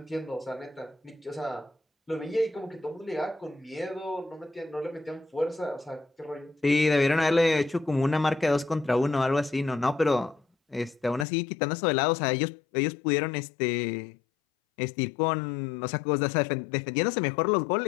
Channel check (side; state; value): right; drops out; at 11.2 s